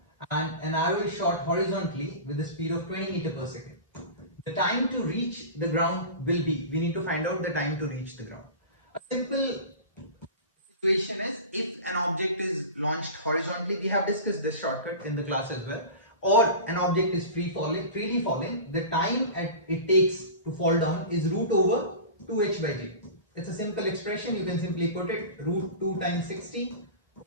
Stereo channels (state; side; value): inverted; both; correlation -0.32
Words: and an arrow is shot horizontally with a speed of 20 meter per second. The time to reach the ground will be, we need to find out the time to reach the ground. A simple situation is, if an object is launched horizontally, we have discussed this shortcut in the class as well, or an object is freely falling, the time it takes to fall down is root over 2h by g. It's a simple expression, you can simply put it root 2 times 60